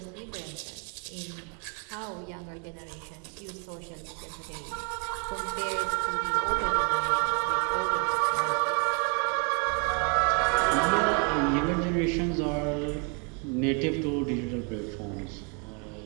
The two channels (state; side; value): quieter; left; 35.1 dB